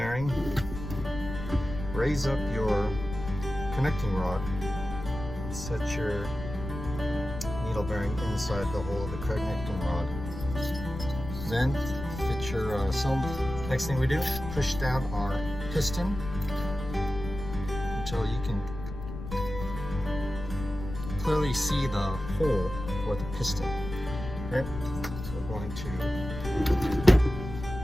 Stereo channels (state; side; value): noise; left; rumble, 9 dB below the sound